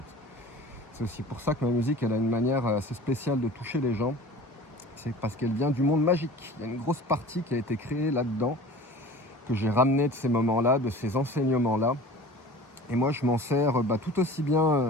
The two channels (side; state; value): both; normal; correlation 0.41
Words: C'est aussi pour ça que ma musique, elle a une manière assez spéciale de toucher les gens. C'est parce qu'elle vient du monde magique. Il y a une grosse partie qui a été créée là-dedans, que j'ai ramené de ces moments-là, de ces enseignements-là. Et moi, je m'en sers tout aussi